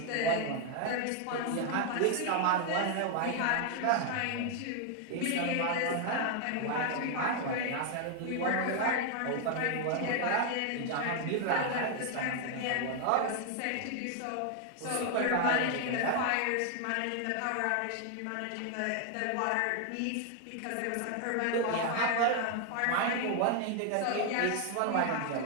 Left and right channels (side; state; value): both; different; correlation 0.00